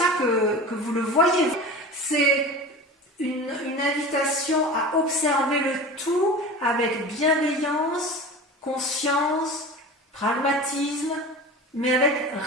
que vous le voyez. C'est une invitation à observer le tout avec bienveillance, conscience, pragmatisme, mais avec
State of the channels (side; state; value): both; normal; correlation 0.34